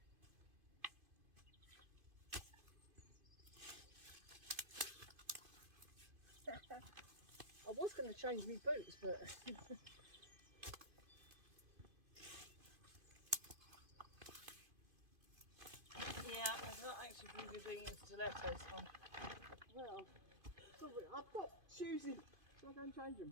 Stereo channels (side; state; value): left; late; 2.5 ms